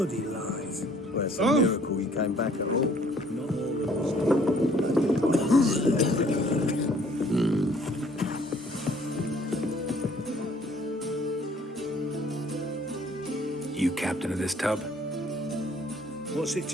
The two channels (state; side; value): normal; both; correlation 0.59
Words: lies. Well, it's a miracle you came back at all. Not all of You captain of this tub? What's it